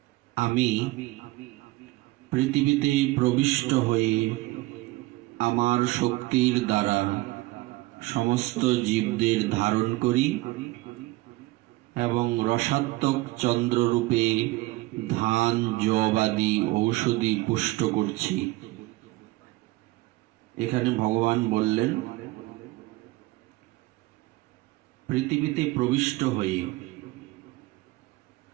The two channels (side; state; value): left; quieter; 20.0 dB